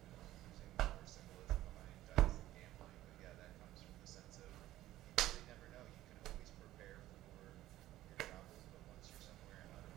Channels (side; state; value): left; quieter; 14.9 dB